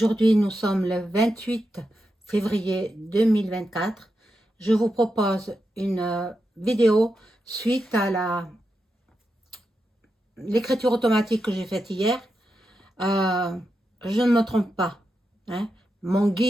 nous sommes le 28 février 2024. Je vous propose une vidéo suite à l'écriture automatique que j'ai faite hier. Euh, je ne me trompe pas, hein. Mon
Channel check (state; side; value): normal; both; correlation 0.88